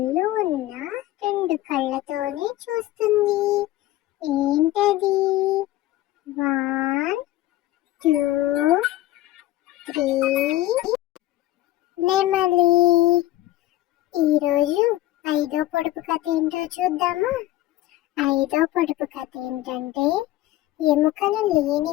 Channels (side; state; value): right; quieter; 15.6 dB